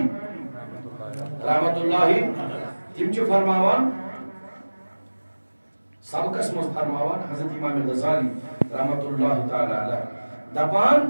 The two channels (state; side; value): inverted; both; correlation -1.00